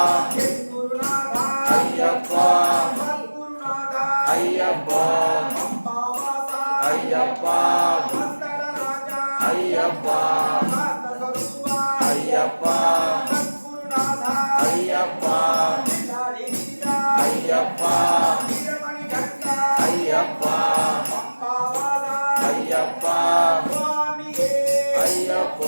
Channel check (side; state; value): both; inverted; correlation -1.00